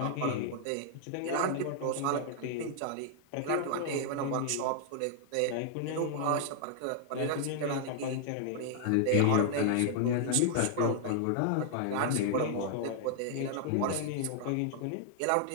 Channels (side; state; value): both; different; correlation -0.01